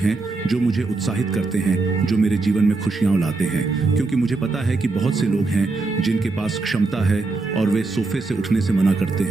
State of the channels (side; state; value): left; quieter; 3.6 dB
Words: जो मुझे उत्साहित करते हैं, जो मेरे जीवन में खुशियां लाते हैं, क्योंकि मुझे पता है कि बहुत से लोग हैं जिनके पास क्षमता है और वे सोफे से उठने से मना करते